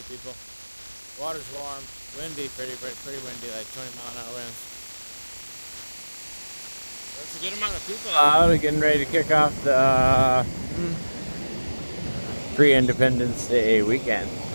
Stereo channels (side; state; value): both; inverted; correlation -1.00